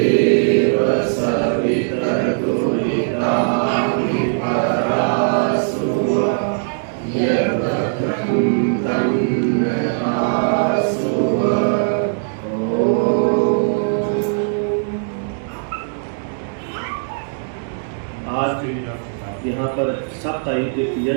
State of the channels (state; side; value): silent; left; digital silence